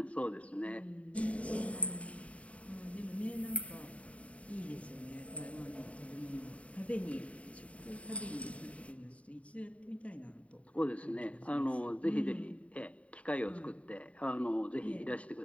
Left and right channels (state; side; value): late; right; 0.065 ms